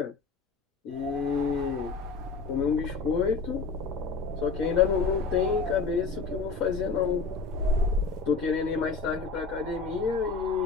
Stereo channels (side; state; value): right; quieter; 4.5 dB